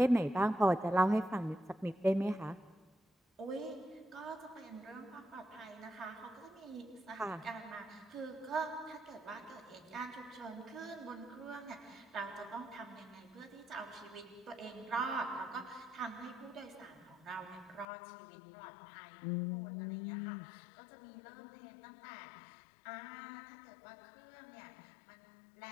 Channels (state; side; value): drops out; right; at 17.9 s